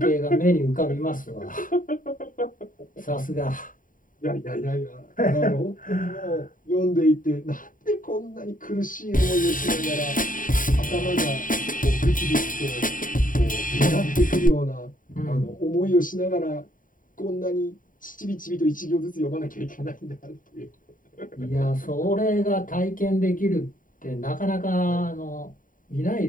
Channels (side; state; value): right; late; 0.39 ms